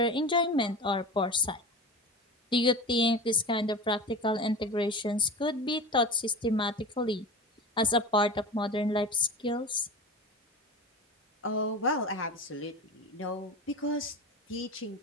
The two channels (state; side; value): normal; both; correlation 0.30